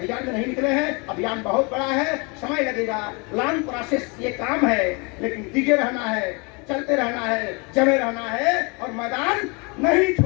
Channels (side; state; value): right; quieter; 30.6 dB